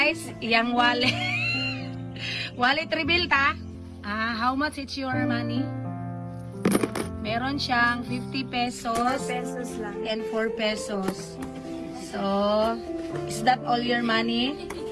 yang wallet. Wallet reveal ta? How much is your money? Meron siyang 50 pesos. 4 pesos lang. And 4 pesos. So, is that all your money?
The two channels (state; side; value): identical; both; correlation 1.00